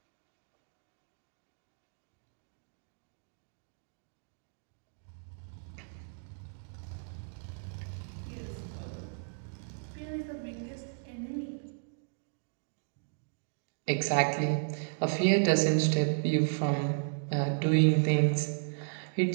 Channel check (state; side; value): silent; left; digital silence